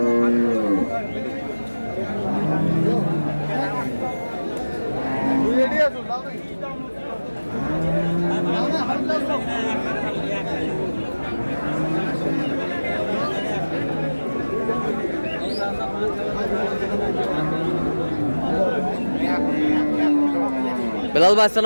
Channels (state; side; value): inverted; both; correlation -1.00